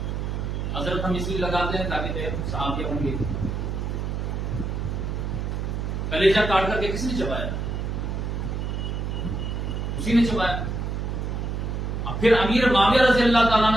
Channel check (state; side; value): noise; right; hum, 2 dB below the sound